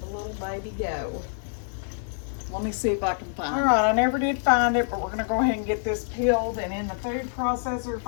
little baby go? Let me see if I can find it. All right, I never did find it, but we're gonna go ahead and get this peeled and in the food processor. If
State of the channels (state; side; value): silent; right; digital silence